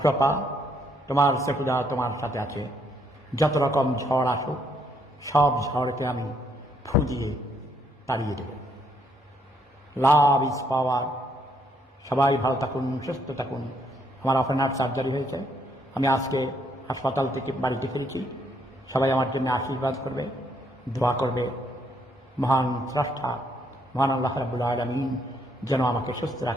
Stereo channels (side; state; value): both; normal; correlation 0.71